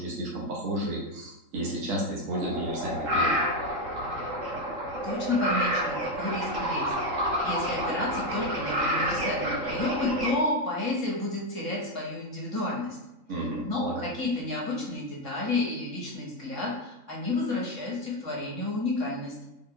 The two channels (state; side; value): late; left; 3.7 ms